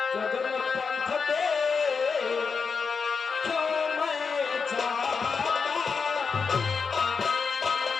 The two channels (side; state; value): right; quieter; 5.3 dB